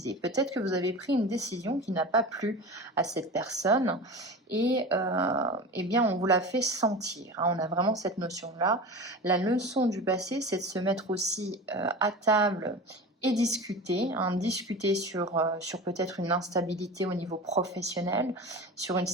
Peut-être que vous avez pris une décision qui n'a pas plu à cette personne et eh bien on vous l'a fait sentir. On a vraiment cette notion-là. La leçon du passé, c'est de se mettre aussi à table et discuter, discuter sur peut-être une instabilité au niveau professionnel, sur une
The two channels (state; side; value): normal; both; correlation 0.31